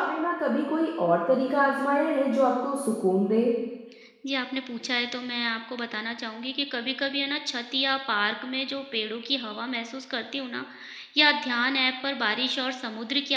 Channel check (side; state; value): both; identical; correlation 1.00